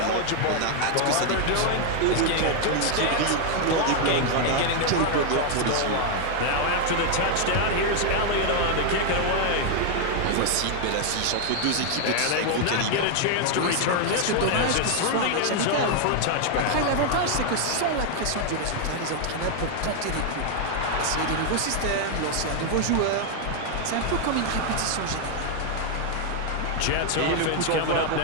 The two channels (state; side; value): different; both; correlation 0.00